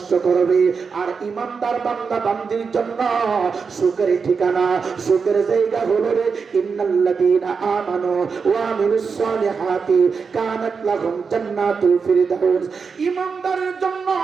করবে, আর ইমানদার বান্দা বান্দির জন্য সুখের ঠিকানা, সুখের জায়গা হলো রে ইন্নাল্লাযীনা আমানু ওয়া আমিলুস সালিহাতি কানাত লাহুম জান্নাতুল ফিরদাউস। ইমানদারের জন্য,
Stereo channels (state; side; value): quieter; left; 5.4 dB